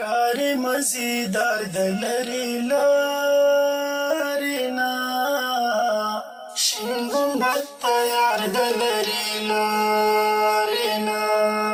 مزیدار د لرې لارې نه شین ګنبد ته یار د لرې لارې نه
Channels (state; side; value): identical; both; correlation 1.00